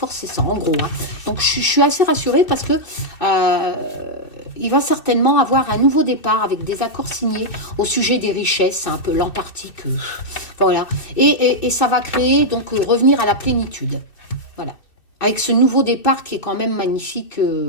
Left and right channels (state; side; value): late; right; 2.6 ms